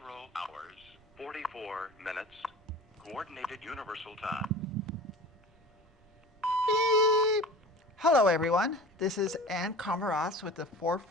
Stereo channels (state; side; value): normal; both; correlation 0.38